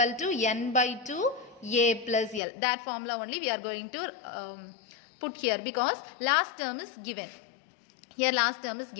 to n by 2 a plus l. That formula only we are going to put here because last term is given. Here last term is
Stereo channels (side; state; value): right; drops out; at 2.4 s